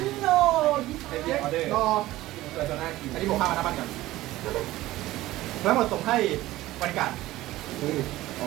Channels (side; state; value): left; quieter; 16.6 dB